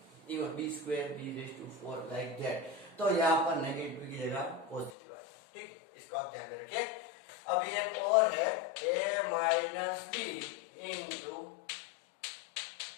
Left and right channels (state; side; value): drops out; right; at 4.9 s